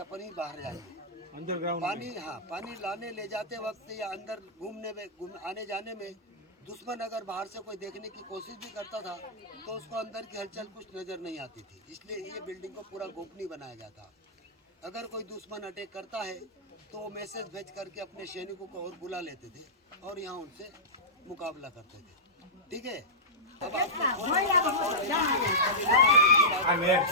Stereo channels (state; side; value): normal; both; correlation -0.14